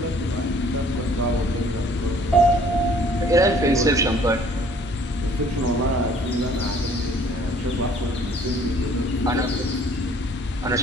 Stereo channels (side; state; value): both; normal; correlation 0.56